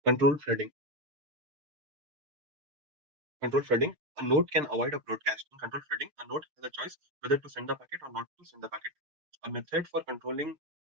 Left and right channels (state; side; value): late; left; 6.6 ms